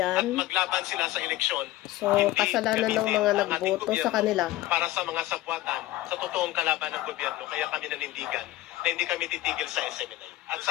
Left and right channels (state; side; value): quieter; right; 16.4 dB